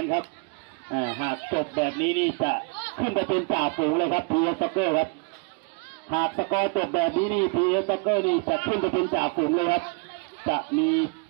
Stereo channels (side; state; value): left; quieter; 31.9 dB